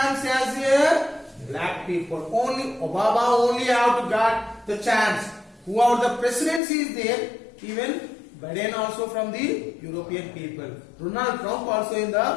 as a black people. Only Obama only have to got the chance. Whoever the presidency is there, even Biden also from the European people. Donald Trump also in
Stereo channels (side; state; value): right; drops out; at 6.6 s